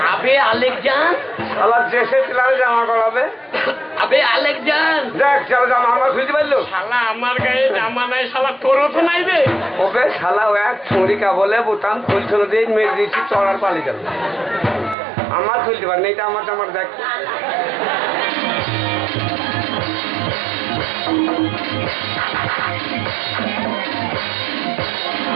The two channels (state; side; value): drops out; left; at 15.0 s